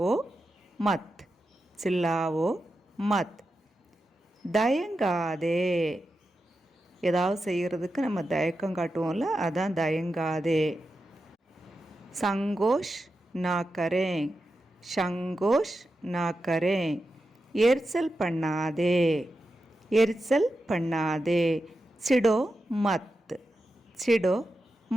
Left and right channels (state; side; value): normal; both; correlation 0.90